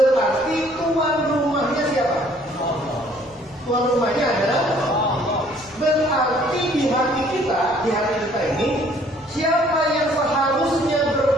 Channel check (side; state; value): right; noise; rumble, 29 dB below the sound